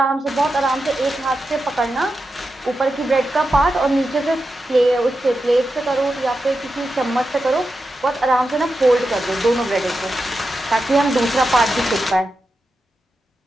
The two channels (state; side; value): normal; both; correlation 0.89